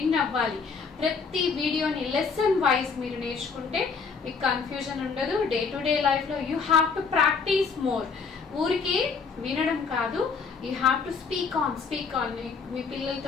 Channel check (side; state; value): right; quieter; 5.2 dB